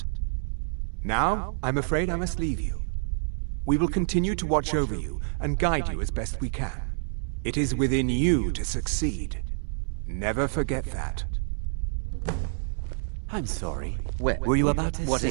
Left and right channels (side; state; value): left; silent; 60 dB below the other